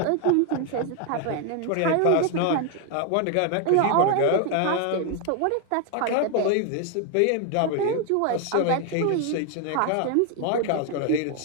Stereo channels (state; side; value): different; both; correlation 0.01